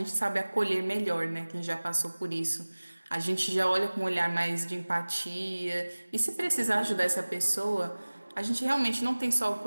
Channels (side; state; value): both; inverted; correlation -1.00